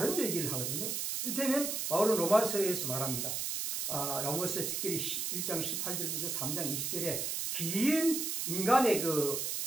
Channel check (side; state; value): right; noise; hiss, 1 dB below the sound